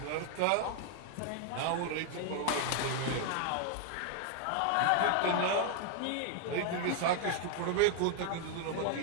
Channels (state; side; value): different; both; correlation 0.00